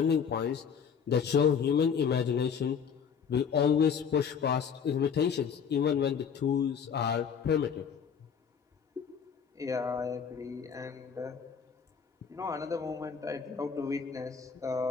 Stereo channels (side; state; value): right; quieter; 6.9 dB